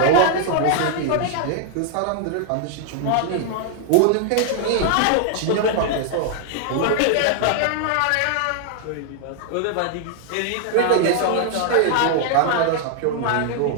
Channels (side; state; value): both; different; correlation 0.00